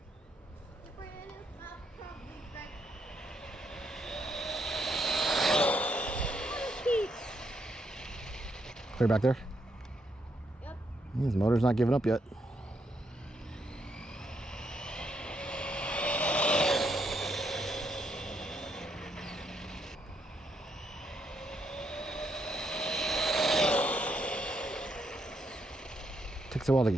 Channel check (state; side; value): normal; both; correlation 0.76